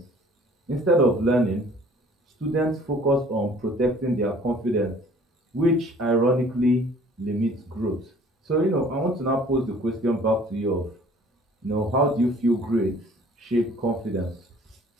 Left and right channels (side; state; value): both; normal; correlation 0.53